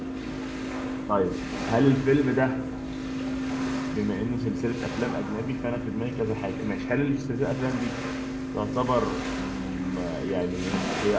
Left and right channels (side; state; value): both; identical; correlation 1.00